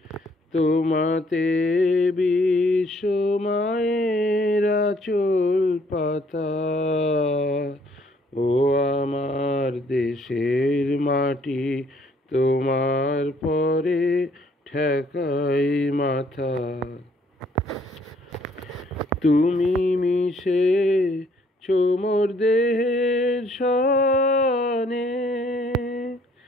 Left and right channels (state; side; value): normal; both; correlation 0.64